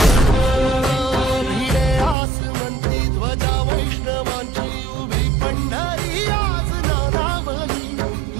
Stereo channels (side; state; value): left; drops out; at 2.1 s